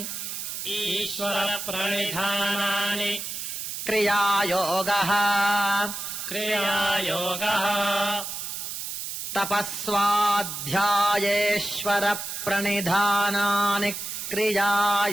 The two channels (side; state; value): right; noise; hiss, 6 dB below the sound